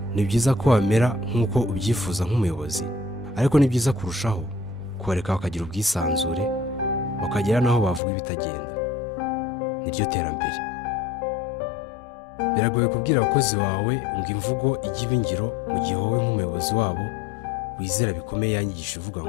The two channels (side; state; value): right; drops out; at 8.0 s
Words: Ni byiza ko wamera nk'uko ubyifuza nk'umuyobozi, ariko ni byiza kurushaho kubareka bakagira ubwisanzure, bakagera n'aho bavuga ibitagenda. Niryo terambere. Biragoye kubwira abakozi bawe ngo imvugo ijye iba ingiro, mu gihe wowe nk'umuyobozi wabo wizera bikomeye yanyigisha uvuga